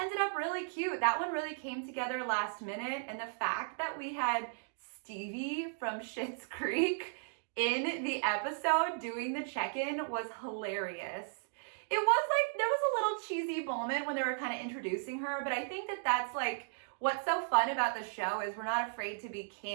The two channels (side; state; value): left; silent; digital silence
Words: up really cute. That one really came together last minute. And the fact that we had Stevie from Schitt's Creek in the episode doing the check-in was hilarious. It was like, there was a little cheesy moment when they were kind of introducing her, but I think that that's like what's so fun about the show is we're not afraid to be